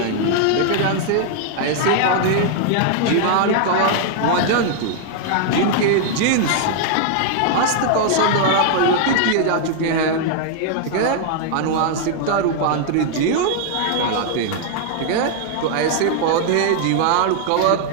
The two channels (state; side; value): different; both; correlation 0.00